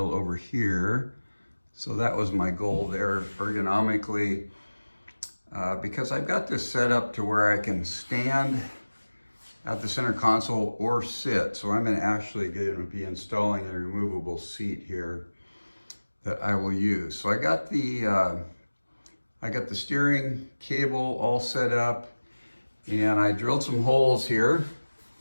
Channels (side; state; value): both; inverted; correlation -1.00